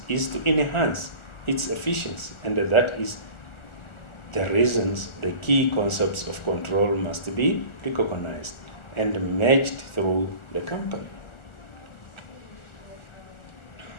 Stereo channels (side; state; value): right; late; 1.4 ms